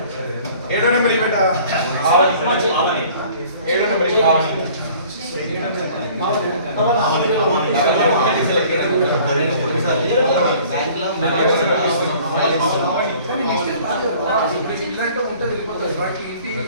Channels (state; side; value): inverted; both; correlation -0.51